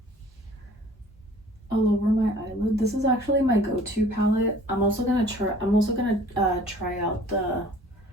all over my eyelid. This is actually my go-to palette. I'm also gonna try out the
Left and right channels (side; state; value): both; normal; correlation 0.51